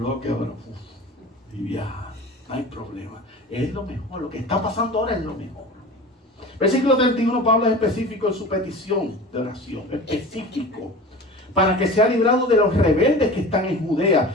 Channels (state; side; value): normal; both; correlation 0.35